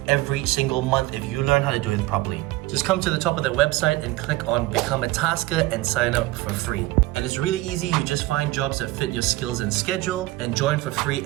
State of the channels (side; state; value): left; quieter; 18.7 dB